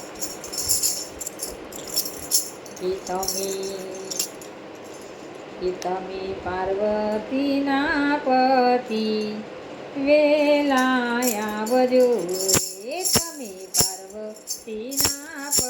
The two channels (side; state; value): both; identical; correlation 1.00